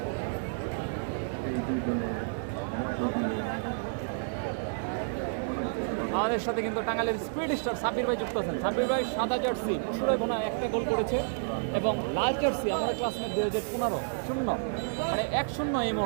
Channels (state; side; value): silent; left; digital silence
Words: আমাদের সাথে কিন্তু টাঙ্গাইলের স্পিড স্টার সাব্বির ভাই যুক্ত আছেন। সাব্বির ভাই সাদা জার্সি মুশিরাগোনা একটা গোল করেছে এবং লাল জার্সি আমরা ক্লাসমেট 2015 0, মানে 1-0 এই